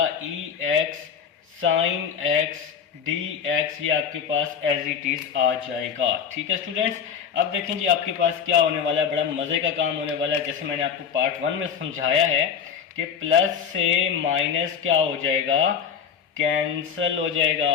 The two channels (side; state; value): right; quieter; 7.3 dB